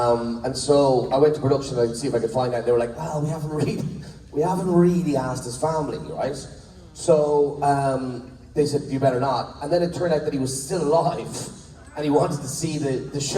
so I went to production to see if I could find out. They were like, well, we haven't really asked his family, right? So they said, you better not. And then it turned out that he was still alive. And he wanted to see the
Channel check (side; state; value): both; identical; correlation 1.00